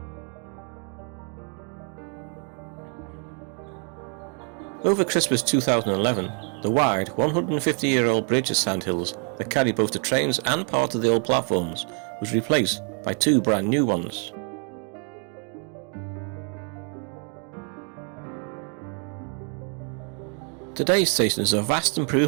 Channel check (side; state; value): left; quieter; 39.8 dB